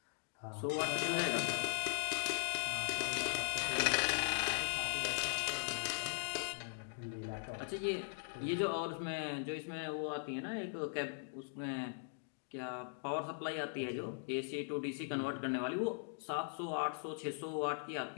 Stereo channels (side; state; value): right; silent; digital silence